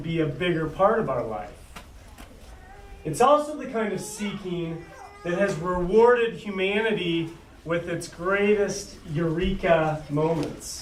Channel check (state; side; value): identical; both; correlation 1.00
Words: a bigger part of our life. It's also the kind of seeking that has rewarded humanity with its greatest eureka